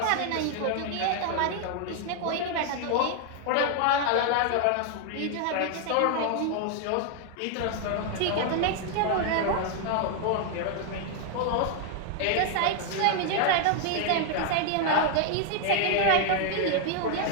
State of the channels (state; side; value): different; both; correlation 0.00